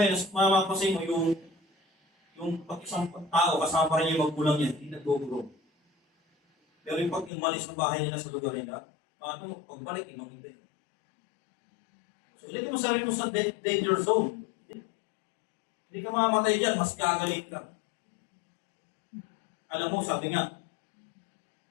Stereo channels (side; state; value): right; drops out; at 7.3 s